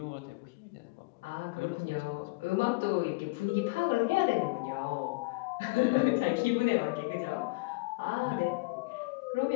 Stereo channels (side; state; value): right; quieter; 25.7 dB